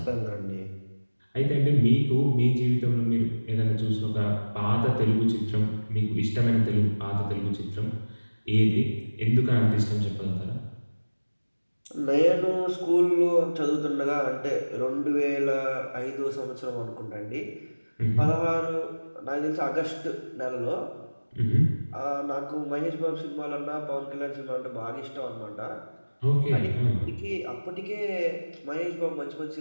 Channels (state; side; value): inverted; both; correlation -1.00